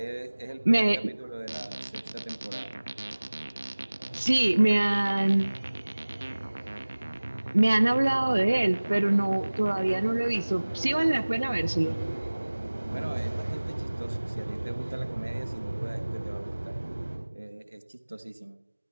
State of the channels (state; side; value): inverted; both; correlation -1.00